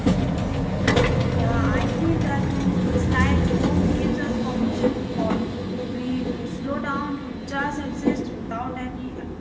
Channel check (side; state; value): both; identical; correlation 1.00